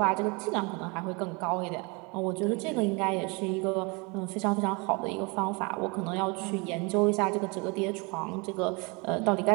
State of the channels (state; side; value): quieter; left; 29.1 dB